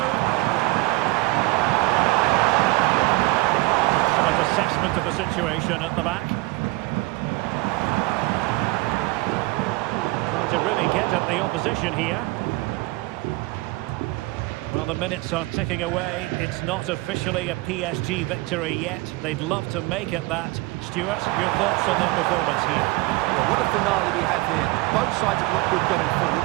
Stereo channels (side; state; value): left; quieter; 22.2 dB